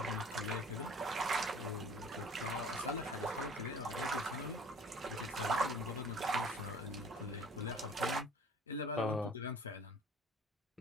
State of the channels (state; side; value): normal; both; correlation 0.48